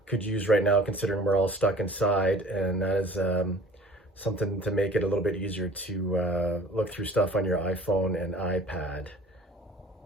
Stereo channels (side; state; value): both; normal; correlation 0.48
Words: could use right now, considering we're all stuck inside, and that is something to make it a little bit easier to look through stuff on your iPhone and iPad.